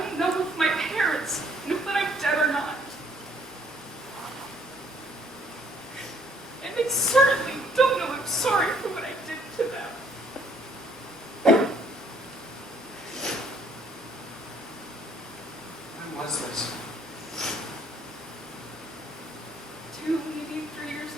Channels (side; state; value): both; normal; correlation 0.64